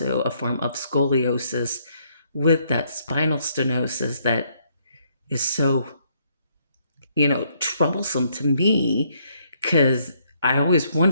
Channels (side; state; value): both; inverted; correlation -0.71